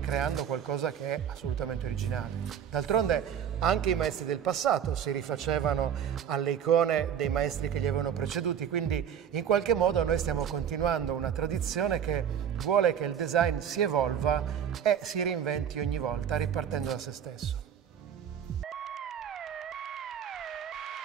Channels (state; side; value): quieter; left; 8.7 dB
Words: qualcosa che è assolutamente originale. D'altronde anche i maestri del passato si rifacevano alle icone dei maestri che li avevano preceduti, quindi in qualche modo noi stiamo continuando una tradizione che vuole che il design si evolva e si reinventi ogni volta ripartendo da se stesso.